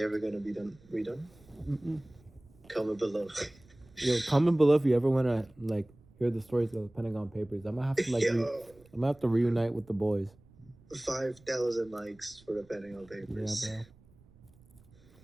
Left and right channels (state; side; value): noise; right; rumble, 27 dB below the sound